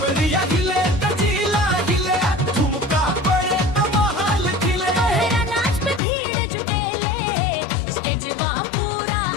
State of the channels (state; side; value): drops out; right; at 6.0 s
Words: हिले त जिला हिले, ठुमका पड़े त महल खिले। तोहरा नाच पे भीड़ जुटेले, स्टेजवा पूरा